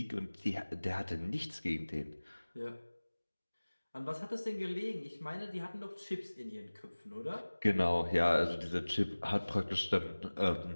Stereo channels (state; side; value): inverted; both; correlation -1.00